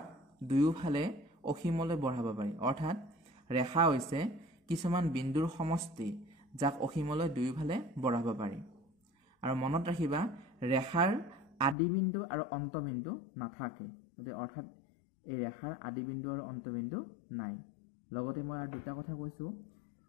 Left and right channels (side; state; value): right; drops out; at 11.8 s